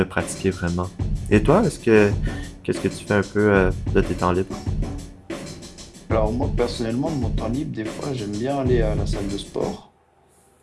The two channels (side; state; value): both; identical; correlation 1.00